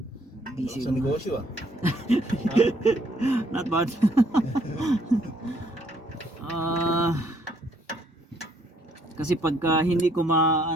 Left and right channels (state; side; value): normal; both; correlation 0.67